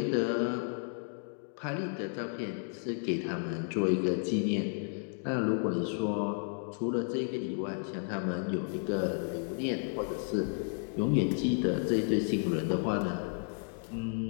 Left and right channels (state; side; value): silent; right; 56 dB below the other